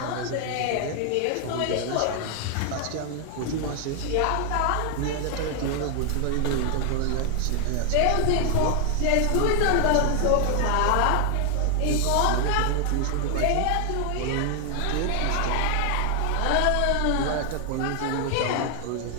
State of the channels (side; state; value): both; different; correlation 0.00